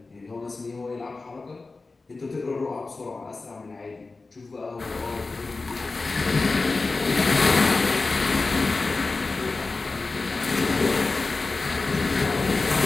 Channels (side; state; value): right; quieter; 3.7 dB